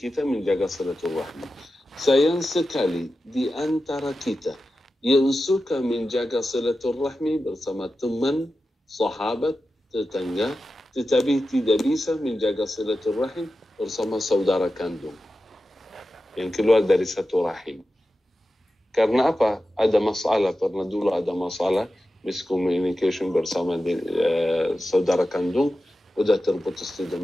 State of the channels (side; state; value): both; normal; correlation 0.92